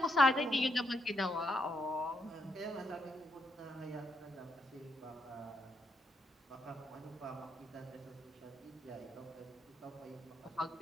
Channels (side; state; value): both; normal; correlation 0.78